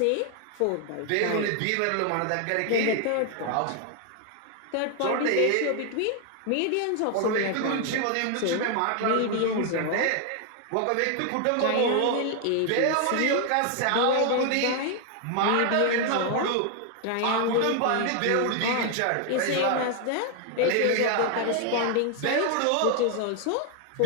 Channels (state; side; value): different; both; correlation 0.00